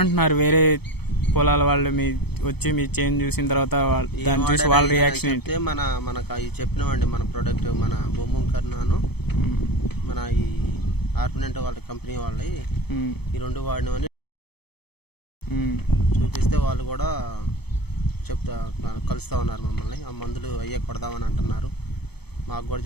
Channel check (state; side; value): late; right; 0.97 ms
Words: వేరే పొలాల వాళ్ళు వచ్చి మీ చేంజ్ చూసిన తర్వాత దాన్ని చూసి వాళ్ళ రియాక్షన్ ఏంటి? మనకు అవి చెప్పినామండి. మన ప్రోడక్ట్ మన బొమ్మ కర్నాను మన ఈ ఆర్పినెంట్ వాళ్ళ కంపెనీ వాళ్ళవి ఈ రెండు వాడినవని చూపిస్తే వాళ్ళు కూడా కలుస్తూ ఉన్నారు మమ్మల్ని. ఆ మందులు అయ్యే కొడదామని అంటున్నారు. మాకు కూడా